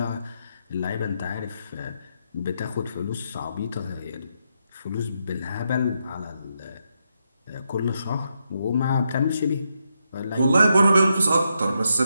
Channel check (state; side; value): inverted; both; correlation -0.82